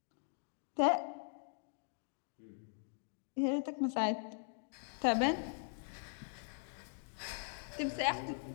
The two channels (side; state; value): right; silent; digital silence